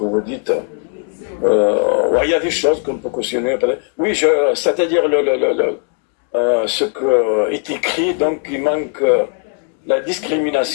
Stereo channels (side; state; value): right; quieter; 39.8 dB